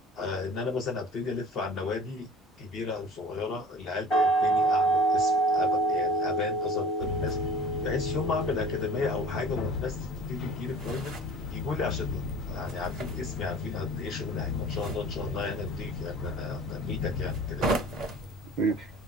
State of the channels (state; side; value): normal; both; correlation 0.44